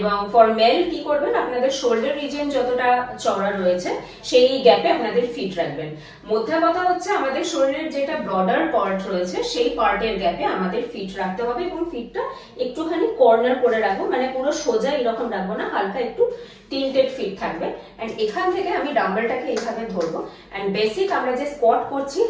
ফর মেল কি করবেন, আপনাদের শোল্ডার রিজিয়ন যতটা চওড়া রয়েছে সেই গ্যাপে আপনাদের ফিট রাখবেন। মধ্যে কথা হচ্ছে আমাদের শরীরের যেটা ব্রডার পার্ট রয়েছে সেই পার্টের গ্যাপে আমাদের ফিট রাখতে হবে এবং ফিটটা একটুখানি কর্নার করে রাখবো, মানে পুরো সোজা এরকম রাখবো না, হালকা একটু টিল্টেড ফিট থাকবে। এন্ড এখান থেকে আমি ডাম্বেলটাকে এইভাবে ধরবো এন্ড বেসিক আমরা যে স্কোয়াট করছি,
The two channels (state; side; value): identical; both; correlation 1.00